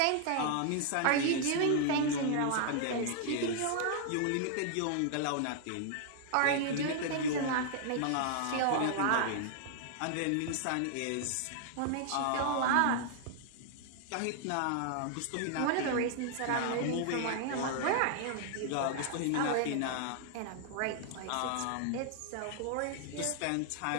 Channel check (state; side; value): different; both; correlation 0.00